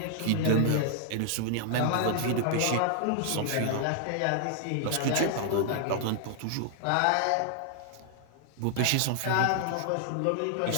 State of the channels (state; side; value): different; both; correlation 0.00